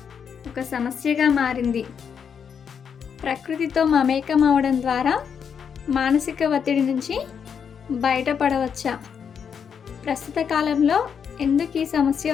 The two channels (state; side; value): quieter; right; 7.1 dB